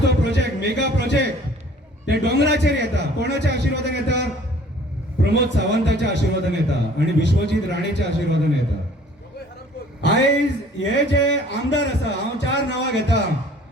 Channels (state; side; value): normal; both; correlation 0.53